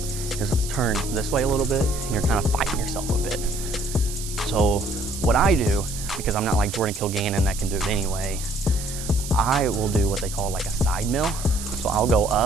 is turned this way a little bit and you're kind of fighting yourself a bit. So what I do, because I'm not like Jordan Kilgannon that can do it anyway, I will do what they call like a side mill. So I'll go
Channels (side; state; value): right; noise; hiss, 10 dB below the sound